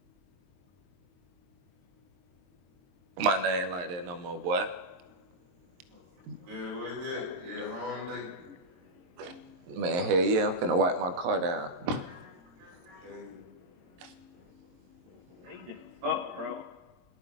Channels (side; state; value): left; late; 23 ms